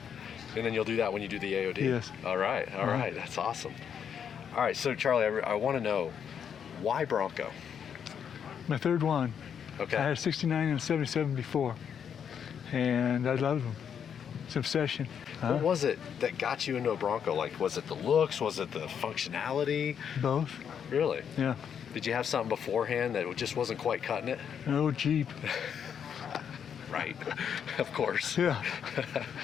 And then you'll do that when you do the AOD? Yes. All right, that's awesome. All right, so Charlie, I want to know, why Bronco? My third one. Okay. I had a 69 and a 77 before, and I loved them. It's an obsession. What was it that got you into a Bronco? Like, was it the looks? Was it the functionality? Both. Really? Yeah. Did you have something beforehand that just wasn't quite cutting it? An old Jeep. Right, of course. Yeah.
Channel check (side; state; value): right; quieter; 7.9 dB